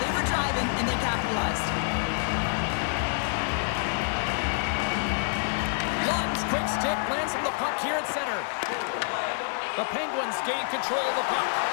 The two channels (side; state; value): right; silent; 60 dB below the other